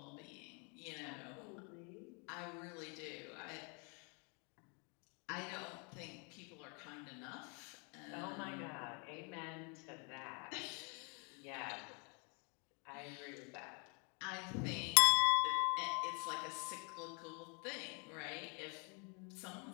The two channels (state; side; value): quieter; right; 35.0 dB